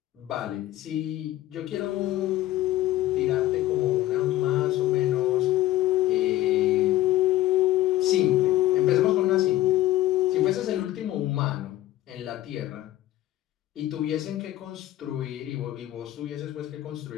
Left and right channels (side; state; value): right; quieter; 15.1 dB